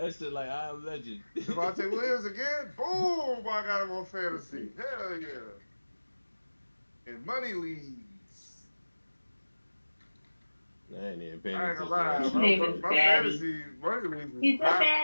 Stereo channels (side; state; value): both; inverted; correlation -1.00